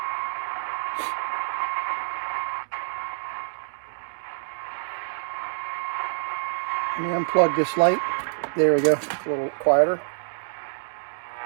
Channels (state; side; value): silent; left; digital silence